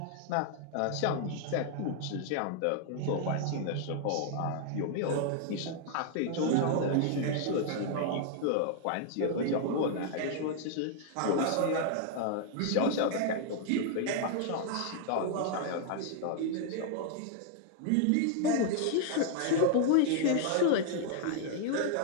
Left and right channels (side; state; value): both; different; correlation 0.00